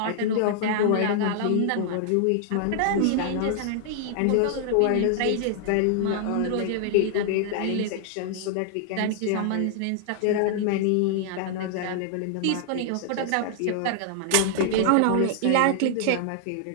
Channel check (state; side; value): different; both; correlation 0.00